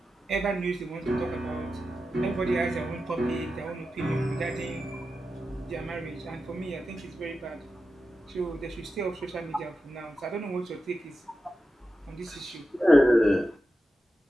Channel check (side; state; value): both; normal; correlation 0.91